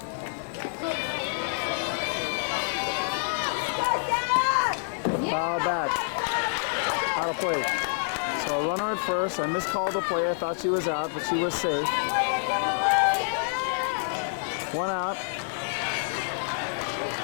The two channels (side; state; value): right; silent; digital silence